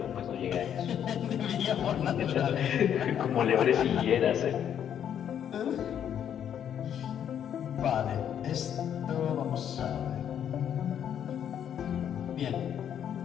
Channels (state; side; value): quieter; right; 9.3 dB